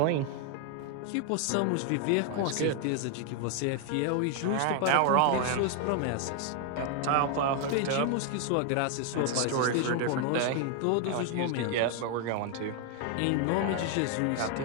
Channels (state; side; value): different; both; correlation 0.00